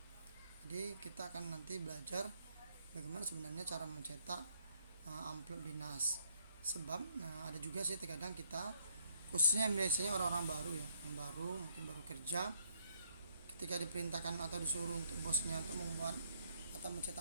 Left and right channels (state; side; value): inverted; both; correlation -0.69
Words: Jadi kita akan nanti belajar bagaimana sebenarnya cara mencetak amplop dinas. Sebab ada juga sih terkadang kita, khususnya biasanya orang-orang baru ya, yang baru mungkin baru kerja, ketika diperintahkan atau disuruh untuk bosnya untuk membuat atau